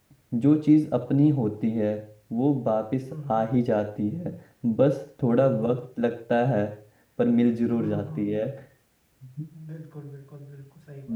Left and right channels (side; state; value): both; identical; correlation 1.00